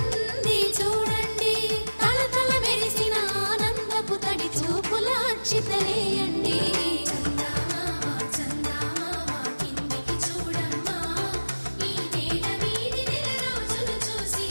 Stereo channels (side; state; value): both; inverted; correlation -1.00